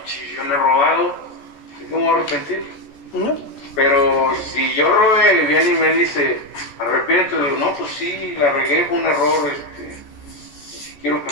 Si yo no he robado, ¿cómo me voy a arrepentir? No. Pero si yo robé y viene y me dice, arrepiéntete, digo, no, pues sí, la regué, fue un error, quiero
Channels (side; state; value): right; late; 14 ms